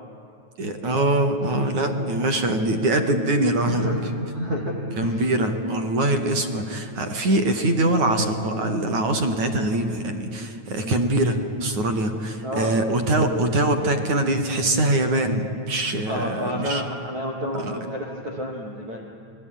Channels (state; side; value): late; left; 9.3 ms